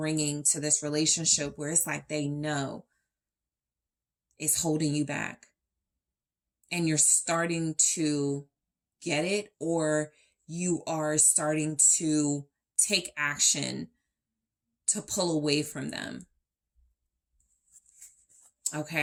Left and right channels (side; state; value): both; identical; correlation 1.00